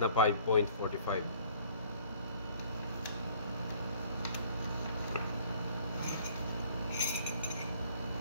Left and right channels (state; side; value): inverted; both; correlation -0.56